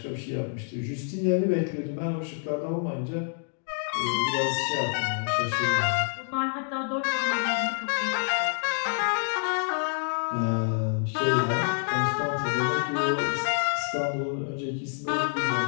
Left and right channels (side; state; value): right; silent; 60 dB below the other